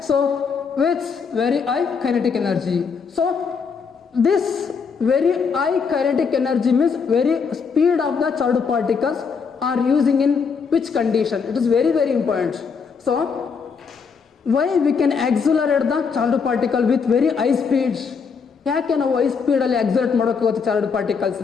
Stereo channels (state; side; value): quieter; right; 5.7 dB